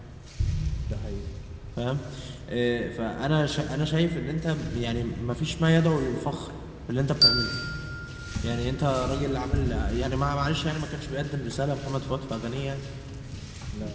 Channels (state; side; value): identical; both; correlation 1.00